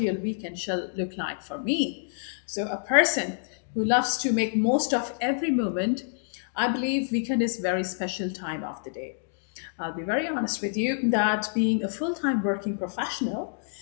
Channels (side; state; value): right; silent; digital silence